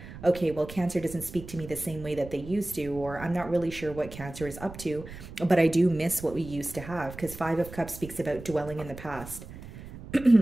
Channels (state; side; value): noise; right; rumble, 14 dB below the sound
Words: okay, well, Cancer doesn't speak to me the same way that they used to, or I'm not really sure what Cancer is up to, but I do miss what we used to have, because Five of Cups speaks about dwelling in the past.